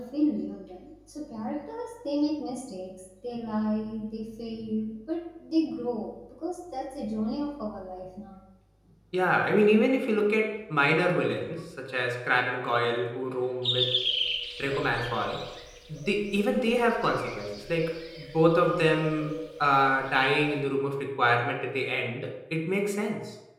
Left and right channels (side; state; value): both; identical; correlation 1.00